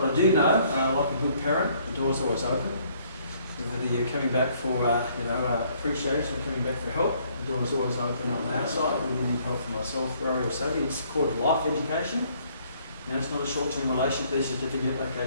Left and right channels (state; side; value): inverted; both; correlation -0.64